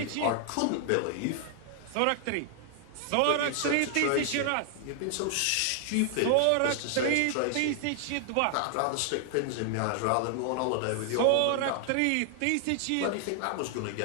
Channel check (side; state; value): both; different; correlation 0.00